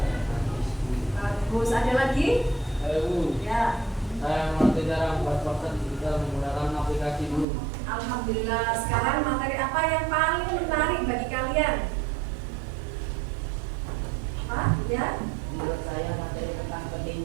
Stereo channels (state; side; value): drops out; left; at 7.5 s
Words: dan hadis. bagus. Ada lagi? Bu, Ya. saya mengerti cara membuat poster digital menggunakan aplikasi Bu. Alhamdulillah. Sekarang materi apa yang paling menarik bagi kalian? Pak, ya? Menurut saya materi tentang